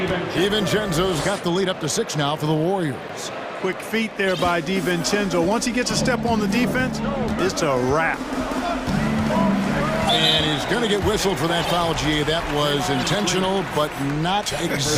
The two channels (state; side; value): identical; both; correlation 1.00